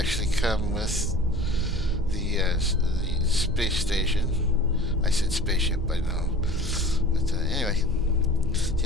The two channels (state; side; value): normal; both; correlation 0.43